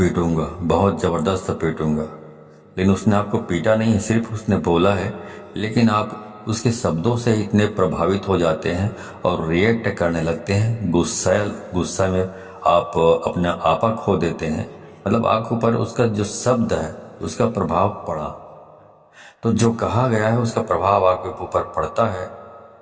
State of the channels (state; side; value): identical; both; correlation 1.00